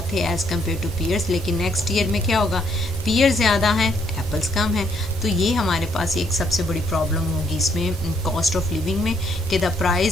थे एज़ कम्पेयर टू पियर्स, लेकिन नेक्स्ट ईयर में क्या होगा? पियर ज़्यादा हैं, एप्पल्स कम हैं। तो ये हमारे पास एक सबसे बड़ी प्रॉब्लम होगी इसमें कॉस्ट ऑफ लिविंग में कि the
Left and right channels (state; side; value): normal; both; correlation 0.69